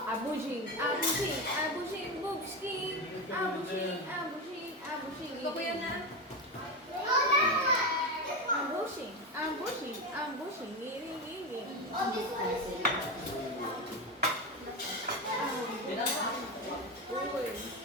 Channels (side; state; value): both; normal; correlation 0.17